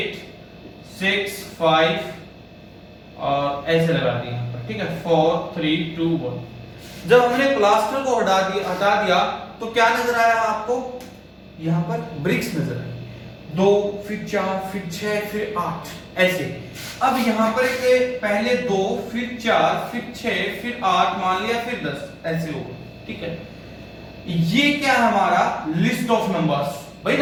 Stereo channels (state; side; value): identical; both; correlation 1.00